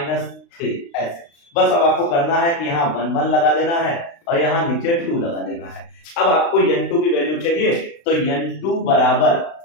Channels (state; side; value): late; right; 36 ms